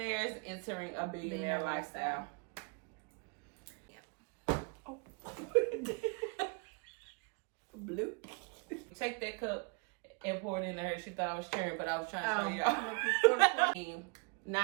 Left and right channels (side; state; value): left; quieter; 32.2 dB